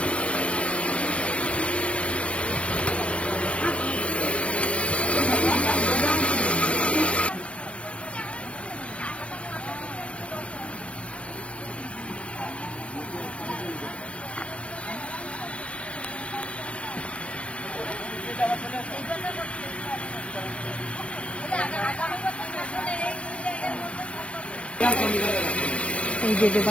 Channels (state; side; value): late; right; 0.061 ms